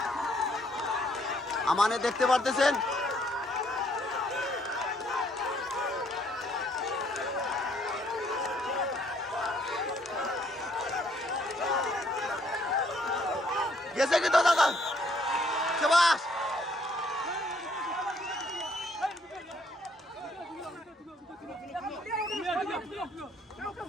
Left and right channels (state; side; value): normal; both; correlation 0.66